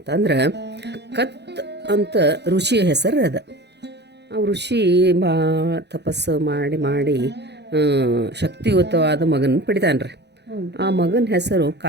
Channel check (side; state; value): left; late; 0.50 ms